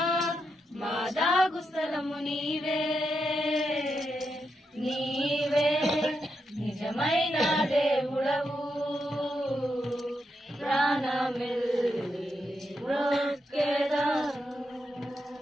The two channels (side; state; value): both; normal; correlation 0.84